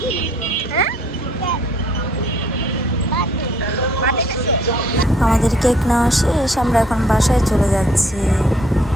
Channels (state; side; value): normal; both; correlation 0.61